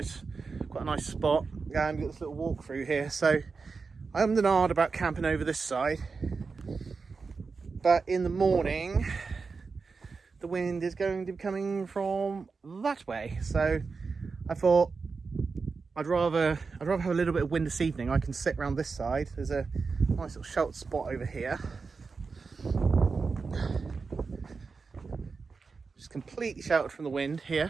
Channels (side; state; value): left; quieter; 4.7 dB